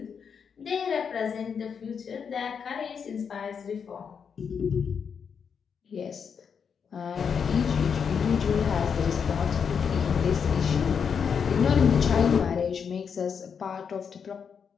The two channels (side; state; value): right; quieter; 6.7 dB